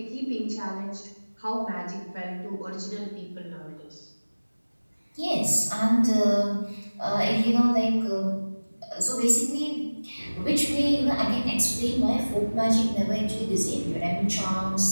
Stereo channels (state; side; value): inverted; both; correlation -1.00